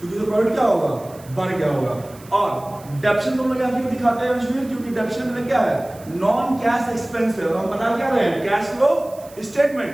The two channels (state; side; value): noise; right; hiss, 23 dB below the sound